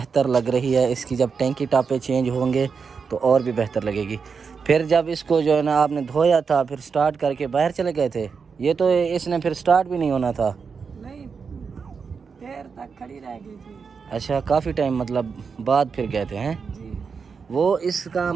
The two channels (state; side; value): quieter; left; 5.6 dB